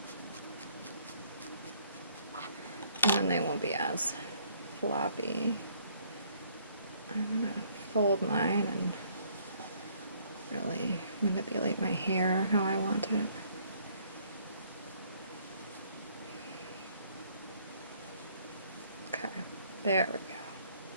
And then they won't be as floppy. I'm gonna fold mine and really manipulate my hair how I want it. Okay, there we go.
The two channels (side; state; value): both; inverted; correlation -0.64